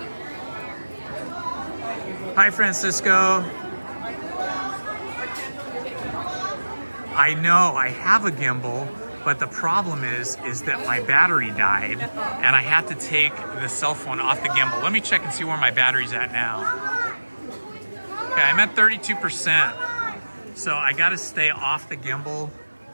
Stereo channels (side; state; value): both; inverted; correlation -1.00